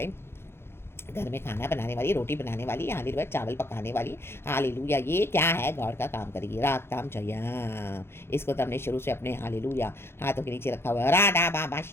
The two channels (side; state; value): right; late; 0.12 ms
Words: घर में खाना बनाने वाली, रोटी बनाने वाली, हालेलुया चावल पकाने वाली, हालेलुया ये क्या है, गॉड का काम करेगी। रागताम जया। इसको तो हमने शुरू से अपने हालेलुया हाथों के नीचे रखा हुआ है। राडा बाबा